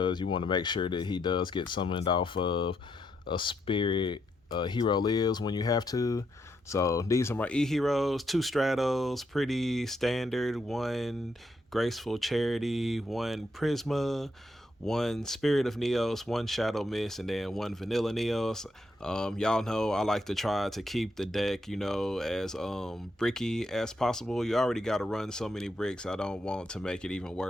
you want to make sure that he does get summoned off of a Spirit Hero Lives when you have to. So these are my E-Heroes, 2 Stratos, pretty standard, 1 Graceful Charity, 1 Prisma, 1 Spirit of Neos, 1 Shadow Mist, and then 1 Vanilla Neos. Y'all know I like to try to keep the deck, as bricky as possible. You already got to run so many bricks. I don't want to make it even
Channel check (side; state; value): both; normal; correlation 0.79